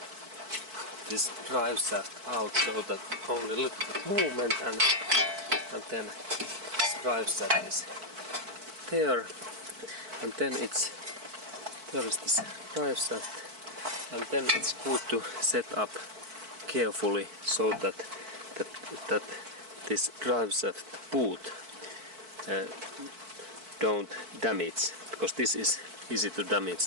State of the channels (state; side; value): late; left; 4.5 ms